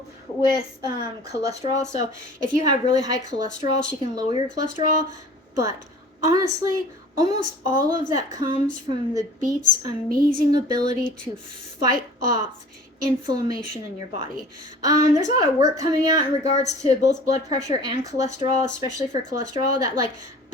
with cholesterol. So if you have really high cholesterol, she can lower your cholesterol. But honestly, almost all of that comes from the beet's amazing ability to fight off inflammation in your body. There's a lot of work coming out in regards to both blood pressure and cholesterol, especially for cholesterol, that like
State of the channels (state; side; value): normal; both; correlation 0.45